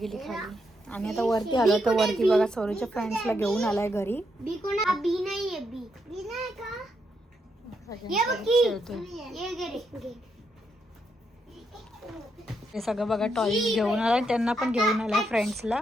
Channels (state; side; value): normal; both; correlation 0.79